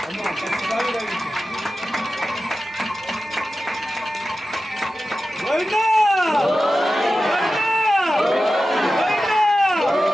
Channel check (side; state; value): both; normal; correlation 0.93